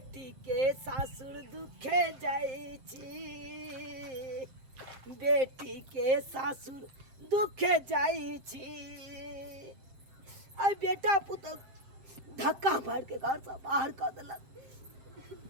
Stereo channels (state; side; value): late; left; 7.6 ms